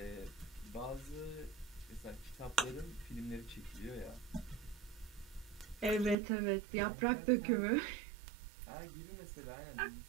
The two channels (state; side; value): drops out; left; at 6.2 s